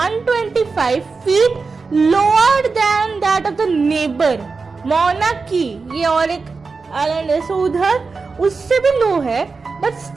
feet lower than that of the neighbour मौना की, ये और एक आइलैंड है, सो उधर उससे भी लो है, but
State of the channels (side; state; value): left; quieter; 4.4 dB